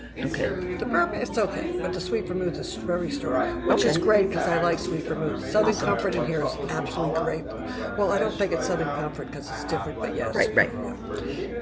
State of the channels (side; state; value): both; identical; correlation 1.00